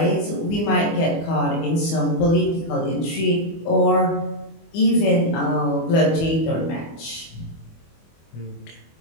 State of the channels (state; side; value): late; right; 24 ms